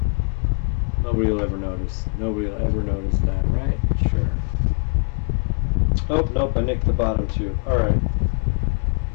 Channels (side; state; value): right; quieter; 37.1 dB